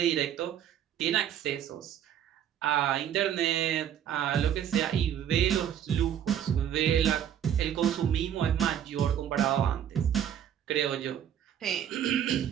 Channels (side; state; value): left; quieter; 9.8 dB